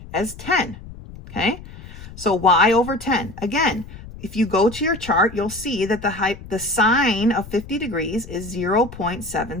as 10. Okay, so y over 10. Again, if you go to your chart, you'll see that the sine of 50 degrees is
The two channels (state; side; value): noise; left; rumble, 15 dB below the sound